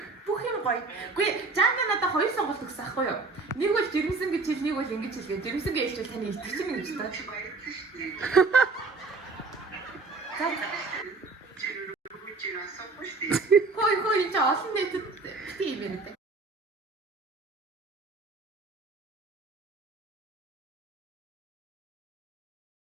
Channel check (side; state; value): left; quieter; 3.9 dB